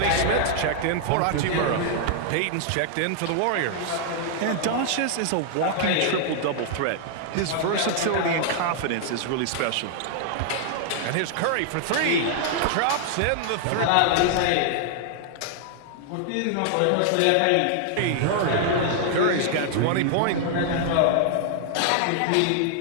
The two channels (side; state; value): both; different; correlation 0.00